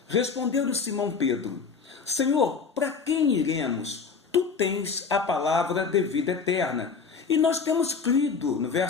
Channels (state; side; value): quieter; right; 5.3 dB